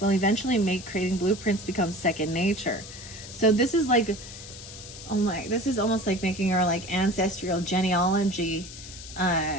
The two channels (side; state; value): left; noise; hiss, 14 dB below the sound